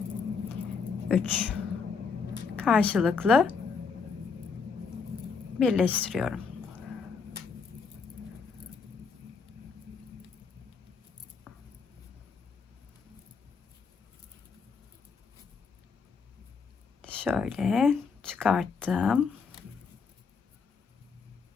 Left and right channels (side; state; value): right; quieter; 5.3 dB